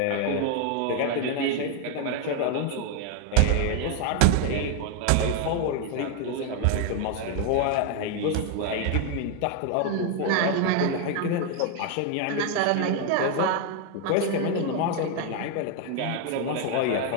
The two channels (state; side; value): different; both; correlation 0.01